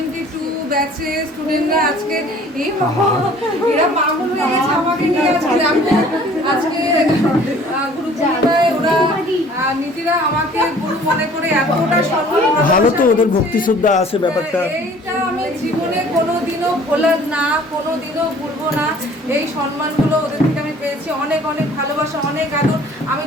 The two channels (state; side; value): normal; both; correlation 0.52